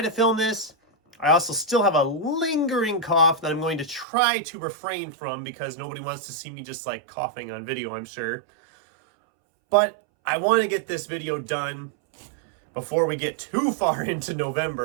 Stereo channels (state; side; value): drops out; left; at 4.0 s